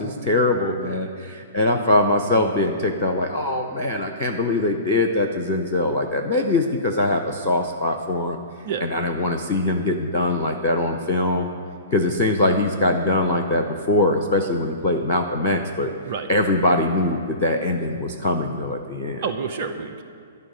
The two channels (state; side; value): inverted; both; correlation -0.38